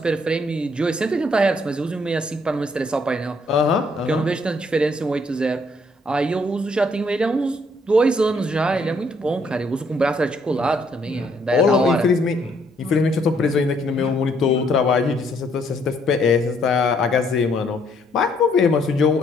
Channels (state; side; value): normal; both; correlation 0.68